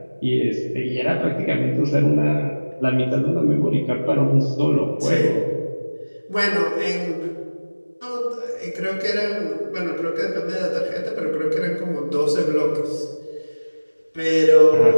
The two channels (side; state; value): both; inverted; correlation -1.00